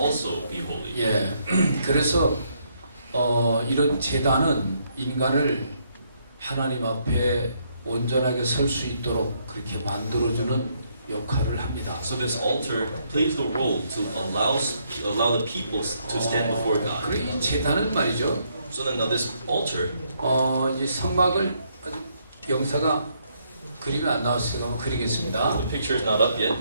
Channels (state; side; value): inverted; both; correlation -0.73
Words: be holy. 예, 그래서 이런 제단은 인간을 하나님 앞에 온전하게 설 수 있도록 그렇게 만들어주는 역할을 합니다. So this altar plays the role to allow the people to stand before God. 그리고 이 제단은 말이죠. So then now this altar, 이 성막을 아주 영사가 그림이 안 나왔으니까 한번 그리겠습니다. the picture is not up yet.